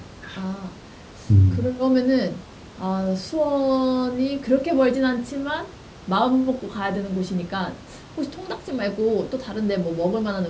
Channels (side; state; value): both; identical; correlation 1.00